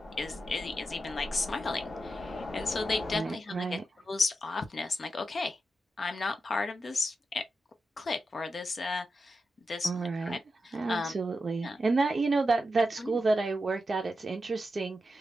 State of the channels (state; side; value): normal; both; correlation 0.88